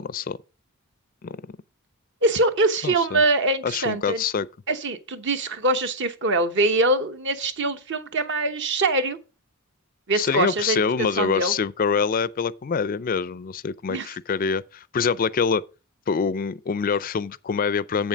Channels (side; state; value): both; normal; correlation -0.06